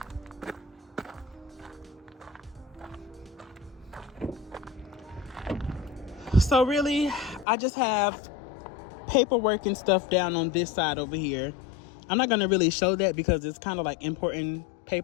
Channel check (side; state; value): right; drops out; at 7.5 s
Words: So really, I just have paperwork and stuff down on this side over here. I'm not going to really show that because it's kind of like important